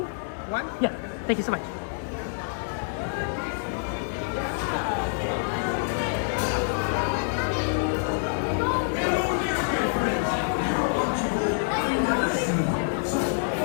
Yeah. Thank you so much.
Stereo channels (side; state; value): right; silent; digital silence